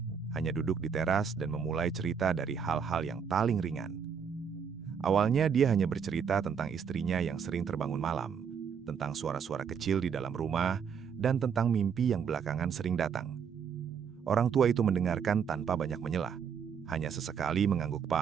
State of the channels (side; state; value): left; quieter; 7.0 dB